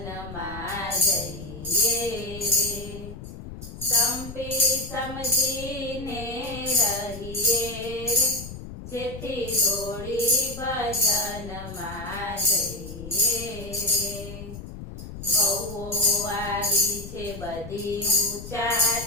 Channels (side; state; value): left; noise; rumble, 11 dB below the sound